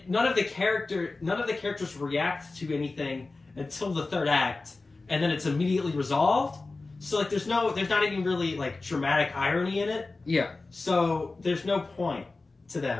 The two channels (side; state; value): right; quieter; 3.5 dB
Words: none of the characters react to anything until the third act, and then it's immediately resolved. So like, there's not even really like dramatic irony in it. Yeah. So there's no point to